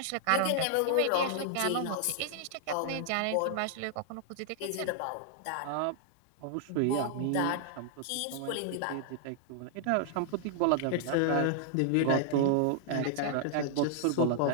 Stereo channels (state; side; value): different; both; correlation -0.01